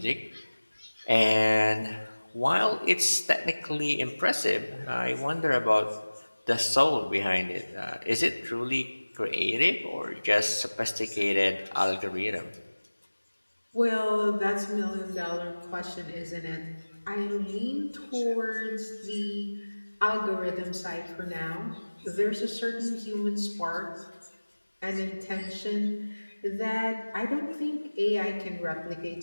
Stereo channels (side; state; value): both; inverted; correlation -1.00